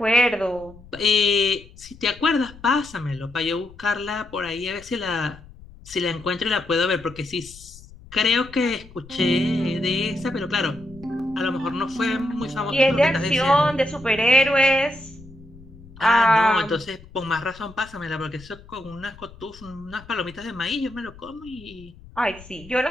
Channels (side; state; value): left; noise; rumble, 21 dB below the sound